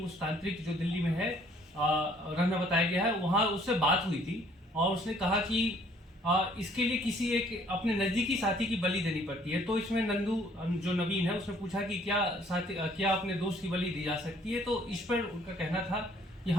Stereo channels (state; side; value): normal; both; correlation 0.60